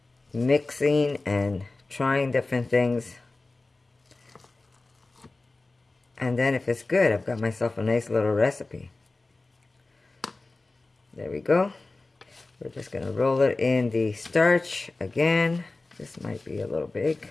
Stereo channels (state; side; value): quieter; right; 3.3 dB